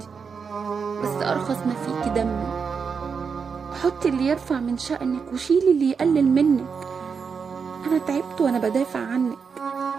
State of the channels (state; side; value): quieter; left; 5.8 dB